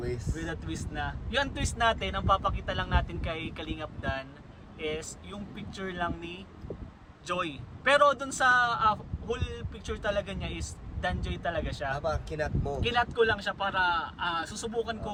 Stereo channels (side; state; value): both; identical; correlation 1.00